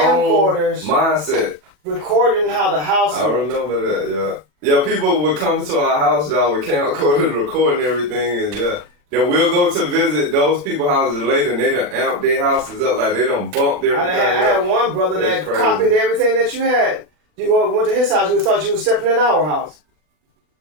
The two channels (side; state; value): left; late; 40 ms